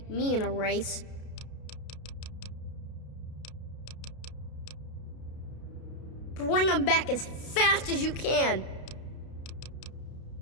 me in a race. Bring them back as fast as you can.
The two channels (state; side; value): late; right; 32 ms